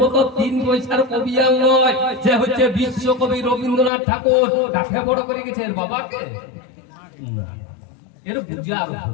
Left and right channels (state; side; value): drops out; right; at 3.9 s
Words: মতো 3 পয়সার কবি আর নয়, যে হচ্ছে বিশ্বকবি রবীন্দ্রনাথ ঠাকুর। কাকে বড় করে গেছে? এর বাবাকে? না, এর বুঝা আর